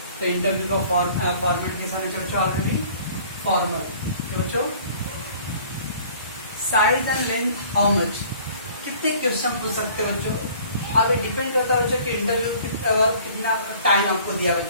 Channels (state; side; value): inverted; both; correlation -0.52